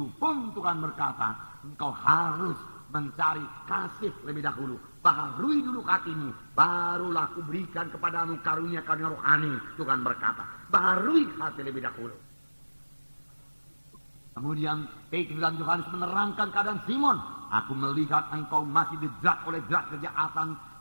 pun Tuhan berkata, engkau harus mencari kasih lebih dahulu, baharui dulu hatimu, barulah aku berikan kepadamu karunia rohani. Tuhan berkata, baharui hati lebih dahulu. Kemudian Petrus dan Yohanes menerangkan keadaan Simon. Aku melihat engkau masih dijerat oleh jerat kejahatan.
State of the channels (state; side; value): inverted; both; correlation -1.00